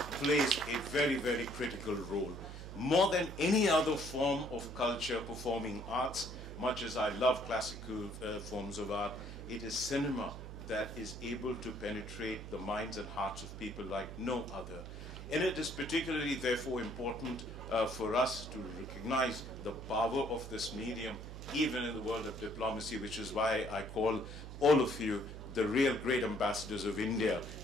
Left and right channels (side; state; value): right; noise; hum, 10 dB below the sound